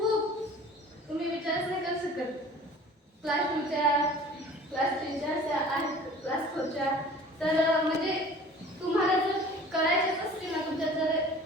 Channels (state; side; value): normal; both; correlation 0.45